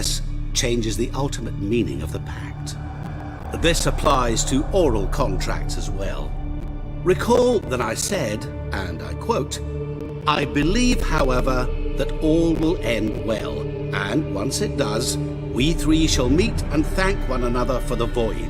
changes the ultimate meaning of the pact. This applies to oral contracts as well. Recall that I said, and I quote, "I believe, however, that all will end well, and once it does, we 3 shall meet and thank one another for the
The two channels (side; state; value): both; identical; correlation 1.00